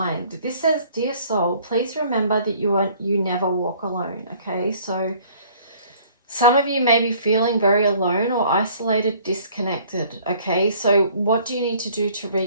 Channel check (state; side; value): inverted; both; correlation -0.56